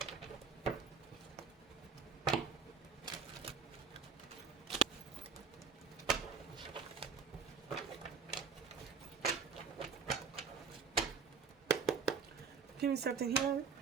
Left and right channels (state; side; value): quieter; left; 5.5 dB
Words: Give me something here